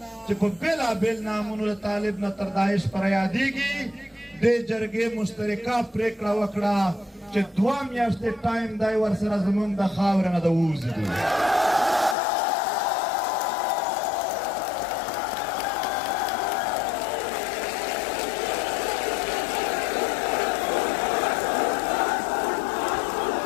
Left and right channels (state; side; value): drops out; right; at 12.2 s